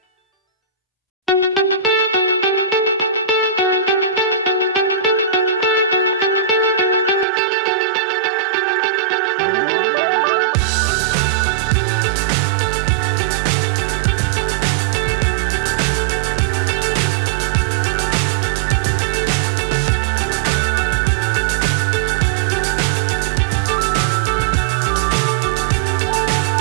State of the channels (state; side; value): drops out; left; at 7.2 s